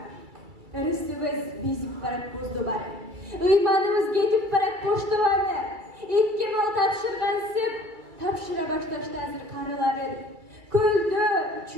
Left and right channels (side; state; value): left; late; 2.3 ms